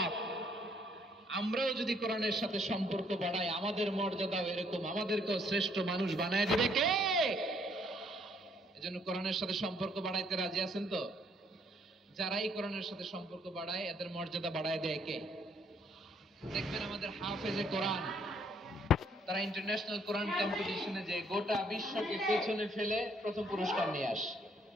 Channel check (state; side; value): normal; both; correlation 0.66